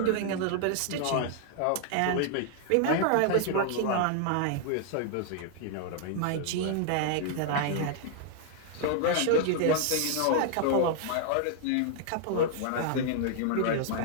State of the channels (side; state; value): both; different; correlation 0.00